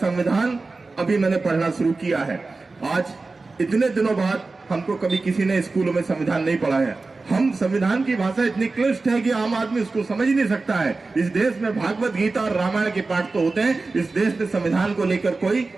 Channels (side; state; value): left; quieter; 3.7 dB